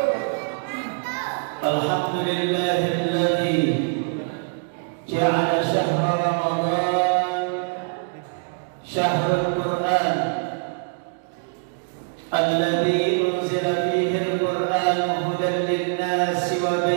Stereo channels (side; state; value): left; silent; digital silence